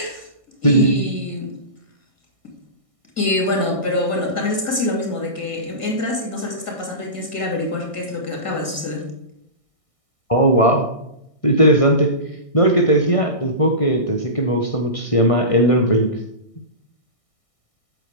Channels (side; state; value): right; late; 1.6 ms